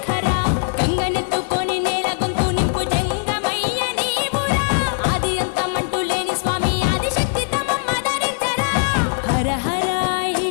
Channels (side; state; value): right; silent; digital silence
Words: గంగనెత్తుకొని నేల గొంతు నింపు జంగమయ్య నీవురా ఆది అంతమంటూ లేని స్వామి ఆదిశక్తి తమమ్మ ధరించరా హర హర